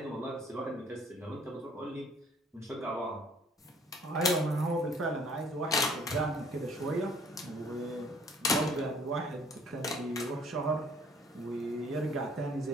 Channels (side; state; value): both; normal; correlation 0.57